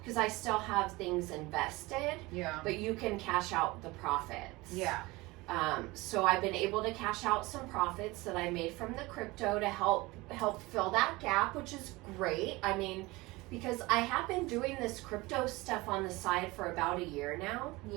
I still have things invested. Yeah. But you can cash out the profits. Yeah. So I've been able to cash out some profits that I made from the crypto to help fill that gap, which is great. I mean, because I have been doing this crypto stuff on the side for about a year now.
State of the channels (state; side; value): quieter; left; 21.9 dB